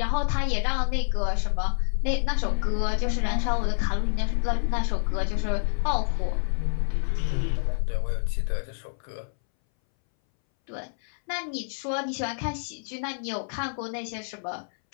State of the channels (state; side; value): silent; right; 60 dB below the other